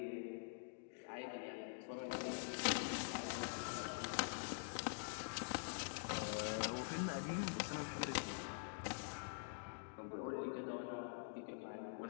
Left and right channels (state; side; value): silent; right; digital silence